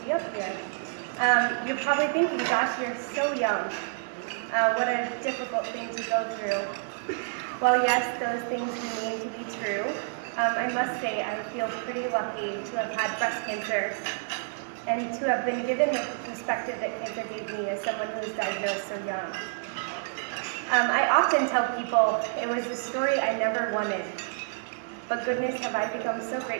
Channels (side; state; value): left; silent; digital silence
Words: up here. You're probably thinking, gosh, you're so young. What a difficult thing to go through. Well, yes, those things remain to be true. I must say I feel pretty lucky to have had breast cancer and to have been given the perspective that cancer gave me as someone who was diagnosed so young. I often tell people it was a story I never wanted, but goodness have I become so